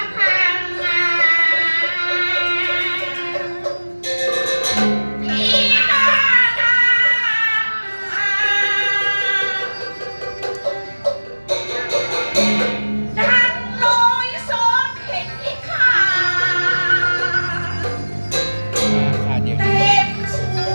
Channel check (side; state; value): both; inverted; correlation -1.00